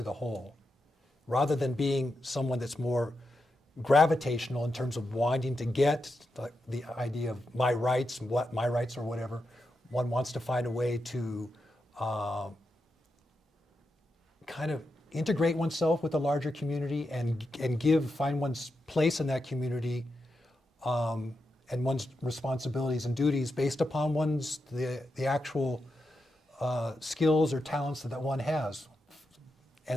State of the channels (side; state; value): both; normal; correlation 0.87